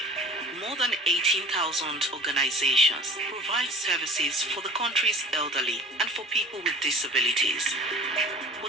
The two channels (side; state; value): both; normal; correlation 0.42